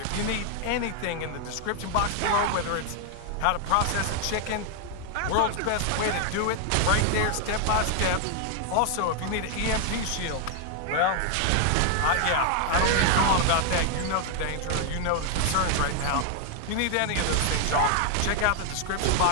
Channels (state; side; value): different; both; correlation 0.00